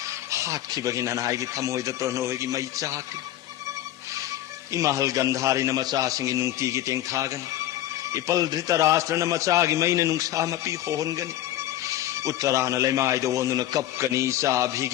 हातखिबगी ननाईगी थमोइद प्रणोइगी मई चाकि इमहल गंधारी न मचा सिंगी नुंगती की तेंग थागन इपल धृतराष्ट्र न मचा की मईन नुंगसा मपी होनगन उत्तरान लेमाई दो न कपकनी सा भी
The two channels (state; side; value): quieter; right; 13.5 dB